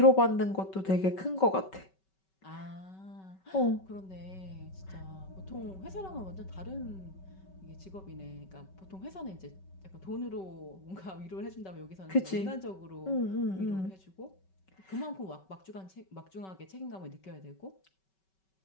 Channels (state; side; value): late; right; 5.3 ms